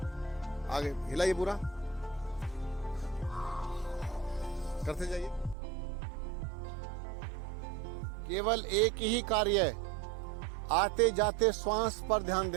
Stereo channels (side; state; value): left; drops out; at 5.6 s